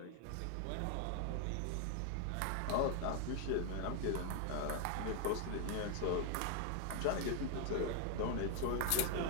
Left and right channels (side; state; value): both; different; correlation 0.00